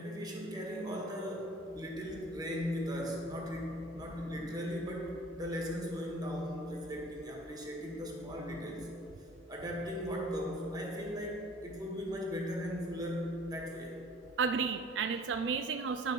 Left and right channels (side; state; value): both; normal; correlation 0.49